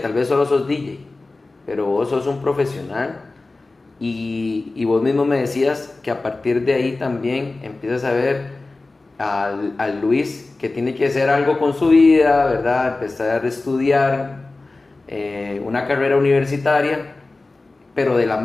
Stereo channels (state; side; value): quieter; right; 3.3 dB